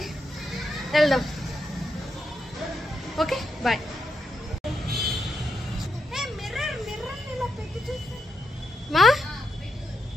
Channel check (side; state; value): both; normal; correlation 0.83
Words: వెళ్దాం. Okay bye. మా